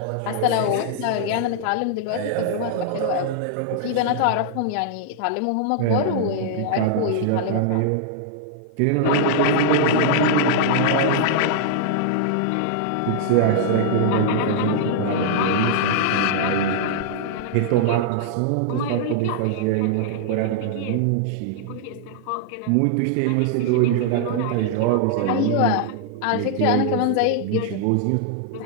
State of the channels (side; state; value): both; different; correlation -0.01